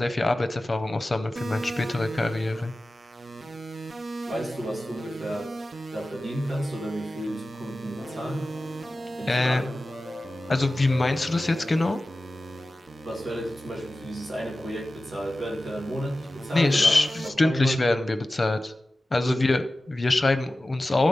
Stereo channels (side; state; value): both; normal; correlation 0.95